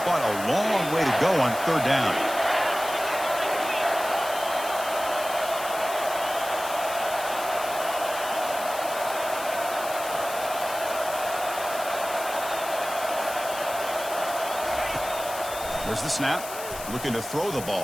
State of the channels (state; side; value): noise; left; hiss, 11 dB below the sound